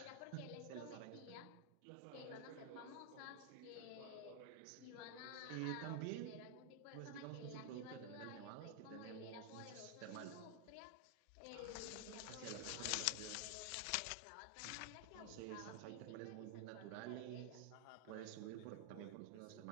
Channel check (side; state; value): both; different; correlation 0.00